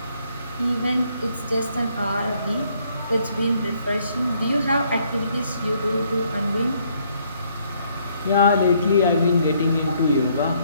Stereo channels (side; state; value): both; inverted; correlation -0.68